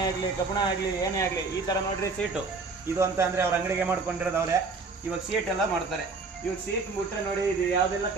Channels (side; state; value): left; quieter; 4.1 dB